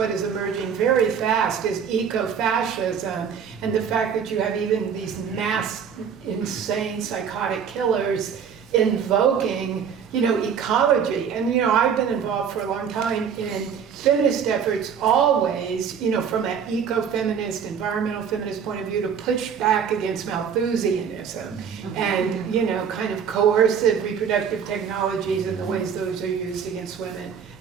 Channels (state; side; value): quieter; left; 7.3 dB